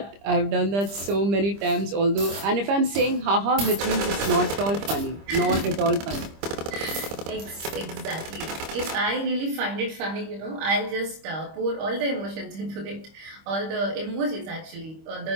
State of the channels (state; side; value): late; left; 25 ms